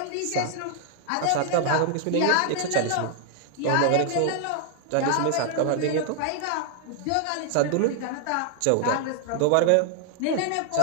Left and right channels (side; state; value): both; different; correlation 0.00